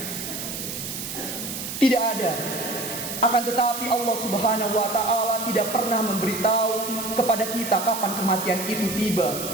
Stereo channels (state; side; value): noise; right; hiss, 6 dB below the sound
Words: Tidak ada. Akan tetapi Allah Subhanahu wa taala tidak pernah memberitahu kepada kita kapan kematian itu tiba.